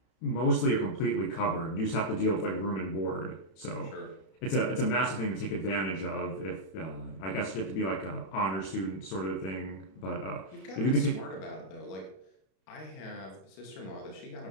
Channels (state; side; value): late; right; 31 ms